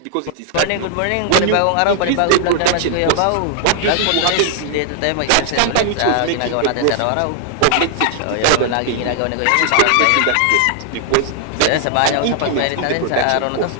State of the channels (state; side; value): different; both; correlation 0.00